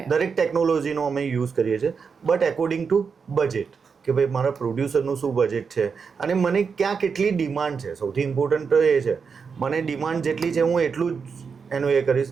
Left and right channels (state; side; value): quieter; left; 5.7 dB